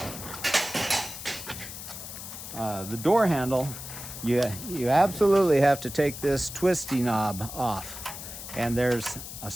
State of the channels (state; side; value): noise; left; hiss, 10 dB below the sound